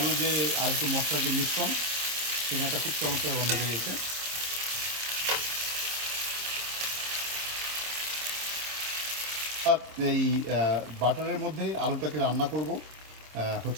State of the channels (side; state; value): left; late; 26 ms